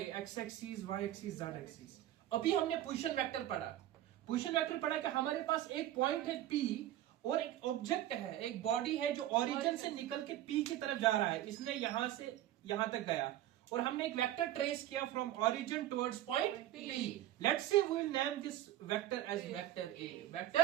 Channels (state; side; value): quieter; left; 13.2 dB